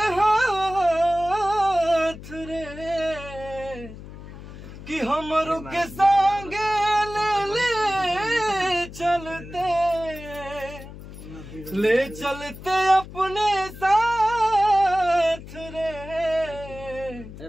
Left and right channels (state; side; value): noise; left; hum, 14 dB below the sound